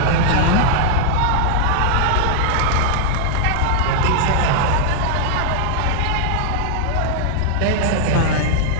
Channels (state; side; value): different; both; correlation -0.01